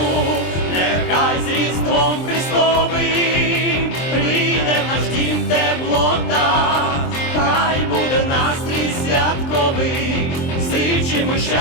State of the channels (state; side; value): late; right; 23 ms